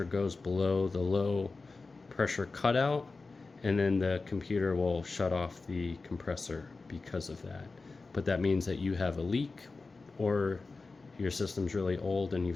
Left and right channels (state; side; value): quieter; right; 3.9 dB